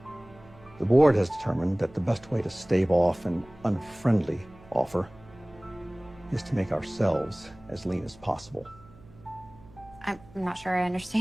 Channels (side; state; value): right; noise; hum, 23 dB below the sound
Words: The board has determined that the best way to stave off an unfriendly offer is to make ourselves as lean as possible. I'm not sure I